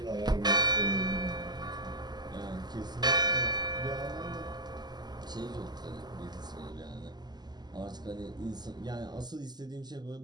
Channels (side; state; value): left; late; 0.20 ms